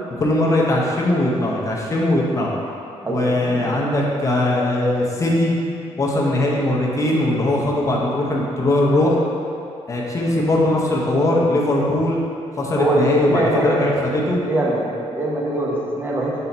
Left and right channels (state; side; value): normal; both; correlation 0.70